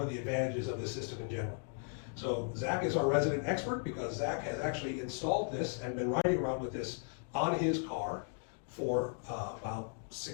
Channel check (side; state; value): right; silent; 53 dB below the other